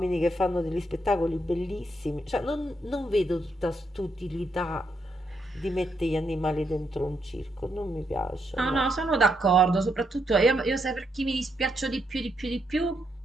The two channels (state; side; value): normal; both; correlation 0.79